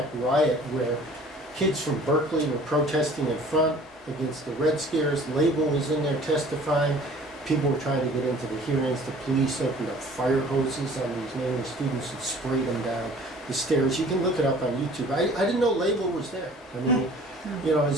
riot, where Kids from Berkeley were protesting in front against the Red Scares. Label was in there testifying. People were trying to get into the hearings. The police opened up fire hoses on these Maoist students and sprayed them down the stairs. You can look it up on YouTube. I didn't know Label was there. I mean, you know,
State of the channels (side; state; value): both; normal; correlation 0.50